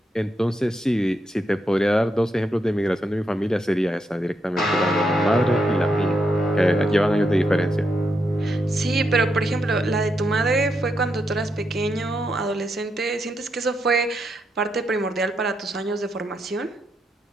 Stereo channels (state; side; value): normal; both; correlation 0.81